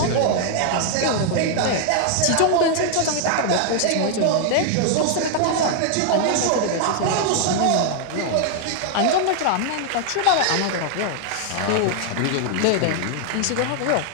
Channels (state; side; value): different; both; correlation 0.00